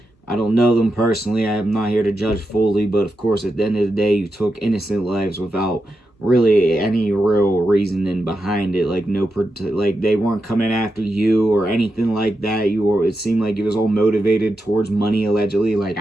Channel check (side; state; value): both; normal; correlation 0.88